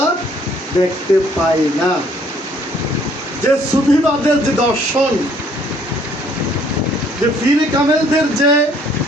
দেখতে পাই না। যে সুফিবাদের যে দর্শন, যে পীর কামেলদের যে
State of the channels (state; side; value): normal; both; correlation 0.62